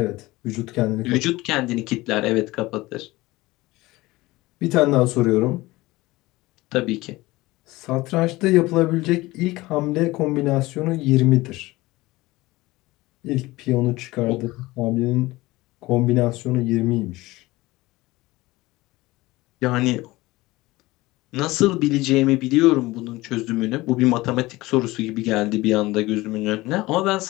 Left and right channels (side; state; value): right; quieter; 19.7 dB